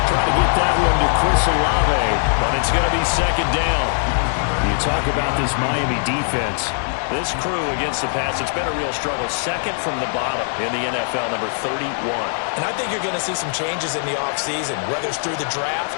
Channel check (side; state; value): right; silent; digital silence